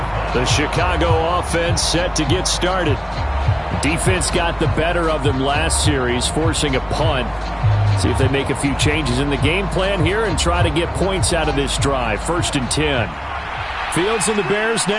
The Chicago offense set to get started. Defense got the better of them last series, forcing a punt. See if they make a few changes in the game plan here and try to get points out of this drive. 1st and 10. Fields and the Bears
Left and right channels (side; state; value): both; identical; correlation 1.00